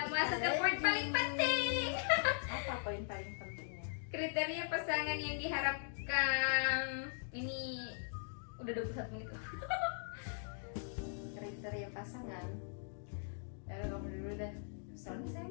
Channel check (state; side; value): silent; right; digital silence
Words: masuk ke poin paling penting. Apa poin paling pentingnya? Kriteria pasangan yang diharapkan. Ini udah 21 menit loh. Kriteria pasangan. Ya kamu dulu deh. Soalnya saya